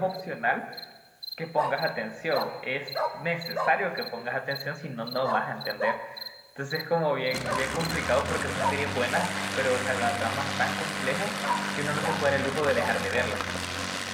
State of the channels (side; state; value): both; identical; correlation 1.00